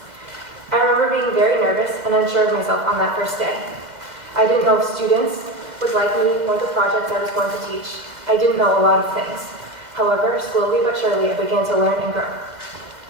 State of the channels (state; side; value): late; left; 2.1 ms